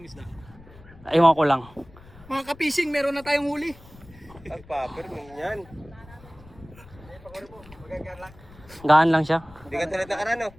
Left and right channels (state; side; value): noise; left; rumble, 22 dB below the sound